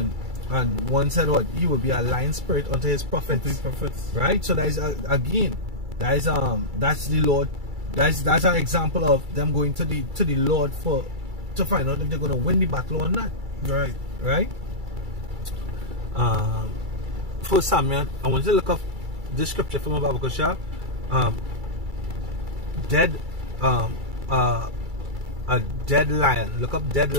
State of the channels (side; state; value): left; late; 2.3 ms